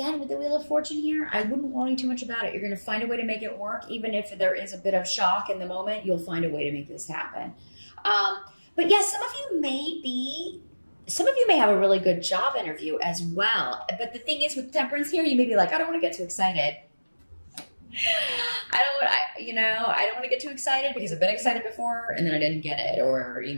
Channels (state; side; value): inverted; both; correlation -1.00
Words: with the Wheel of Fortune here, I wouldn't worry too much about it. You're going to find a way to make it work. Even if there is a bit of shock in the moment, you'll find a way to make this happen. But yes, some of you may have a really good job interview as well. But the thing is, with Temperance here, you may be like, I don't want to get too excited. I don't want to get too excited, because I've been excited before and then I didn't get it, or,